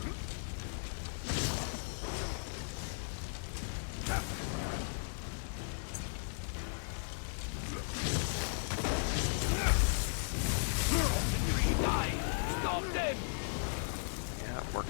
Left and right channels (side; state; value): right; silent; digital silence